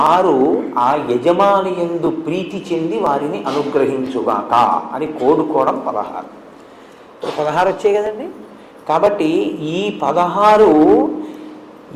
ఆ యజమాని యందు ప్రీతి చెంది వారిని అనుగ్రహించుగాక అని కోడుకోవడం 16. 16 వచ్చాయి కదండి. కాబట్టి ఈ 16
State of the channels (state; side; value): identical; both; correlation 1.00